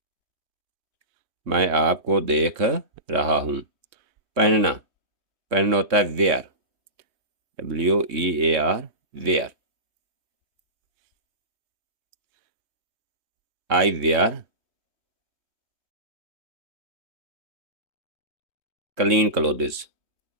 मैं आपको देख रहा हूँ। पहनना, पहनना होता है wear, WEAR, wear. I wear clean clothes,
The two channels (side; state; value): left; late; 3.2 ms